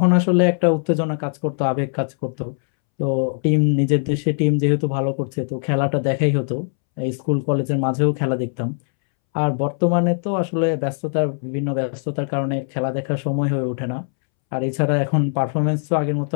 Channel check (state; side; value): silent; right; 65 dB below the other